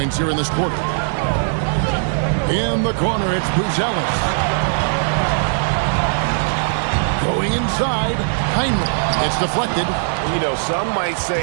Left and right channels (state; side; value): silent; left; 61 dB below the other